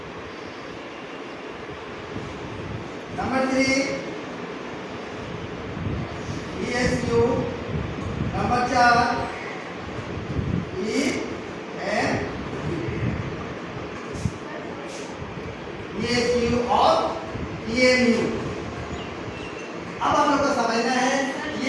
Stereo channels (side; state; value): both; identical; correlation 1.00